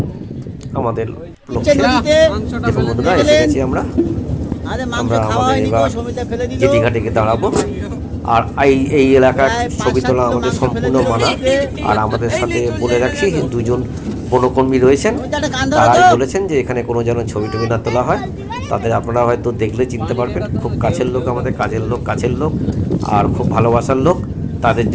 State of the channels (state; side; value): identical; both; correlation 1.00